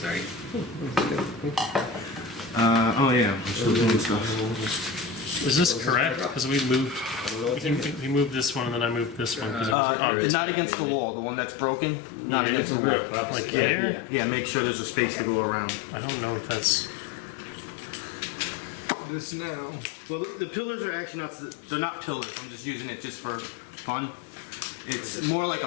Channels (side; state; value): right; drops out; at 9.8 s